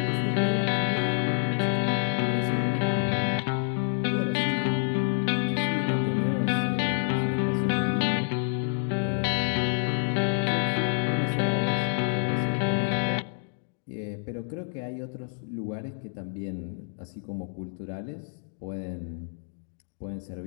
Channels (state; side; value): silent; right; digital silence